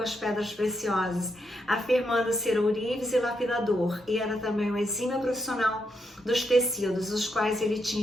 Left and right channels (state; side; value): normal; both; correlation 0.81